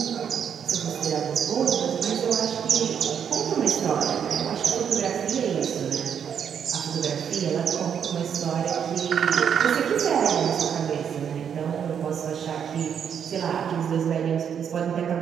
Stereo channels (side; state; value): left; quieter; 8.0 dB